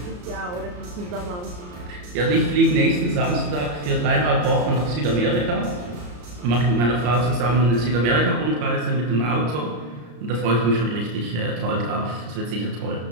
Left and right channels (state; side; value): late; left; 34 ms